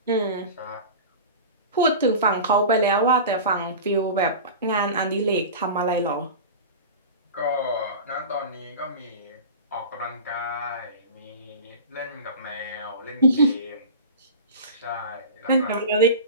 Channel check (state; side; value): inverted; both; correlation -0.33